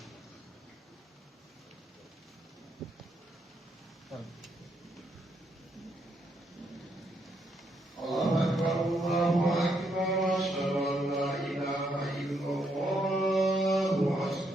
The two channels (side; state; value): both; normal; correlation 0.76